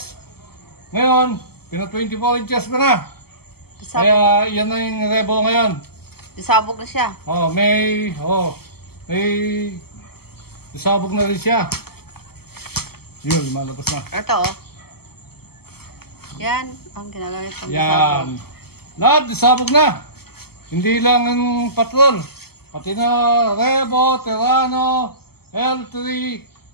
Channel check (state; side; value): late; right; 0.96 ms